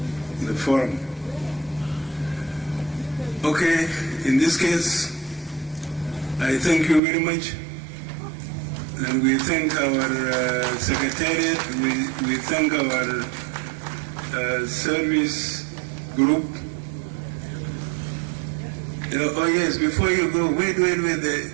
forum. Okay, in this case, I thank you very much. And we thank our Secretariat, we thank our service group. Oh yes, before you go, wait,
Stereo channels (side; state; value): left; drops out; at 7.0 s